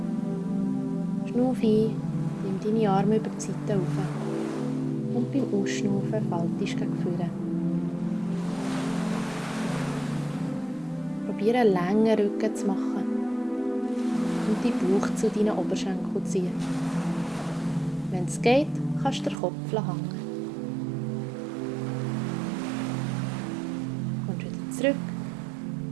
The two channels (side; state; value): left; drops out; at 19.4 s